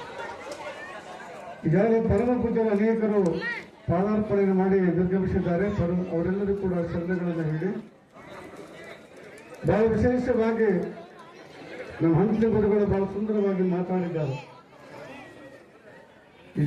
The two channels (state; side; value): identical; both; correlation 1.00